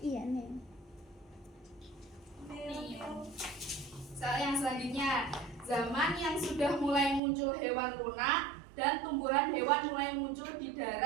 Iya, nih. Soal yang selanjutnya, zaman yang sudah mulai muncul hewan lunak dan tumbuhan hewan mulai muncul di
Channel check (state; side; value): drops out; left; at 7.2 s